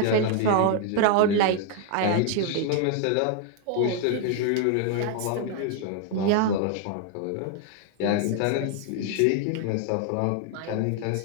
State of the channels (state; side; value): different; both; correlation 0.00